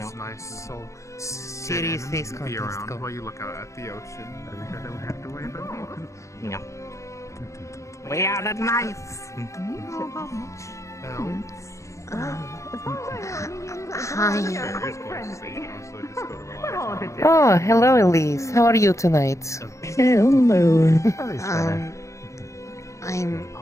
nice. So sit and be around while you look out at the ocean. I don't have to worry about it. No. We are the knights. Hi. Oh, hello, Elise. How are you tonight? Hello. I'm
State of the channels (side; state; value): right; late; 0.15 ms